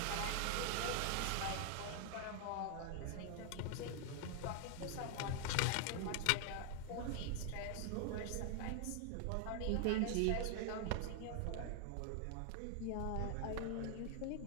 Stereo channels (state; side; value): different; both; correlation 0.00